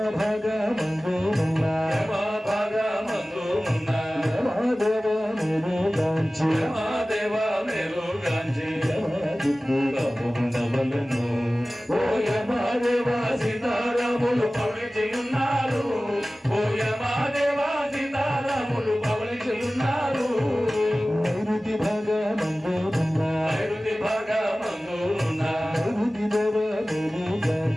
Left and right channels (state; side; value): normal; both; correlation 0.97